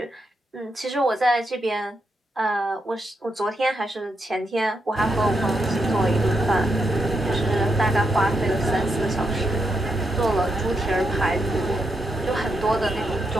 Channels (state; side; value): normal; both; correlation 0.82